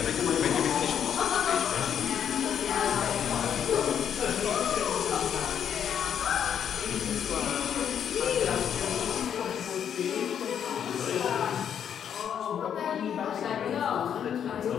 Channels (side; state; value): right; quieter; 8.6 dB